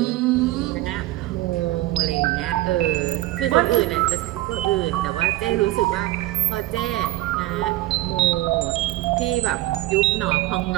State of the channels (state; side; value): quieter; left; 17.2 dB